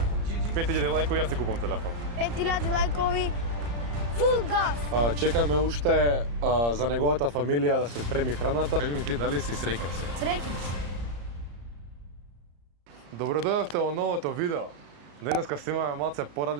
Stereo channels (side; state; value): left; late; 34 ms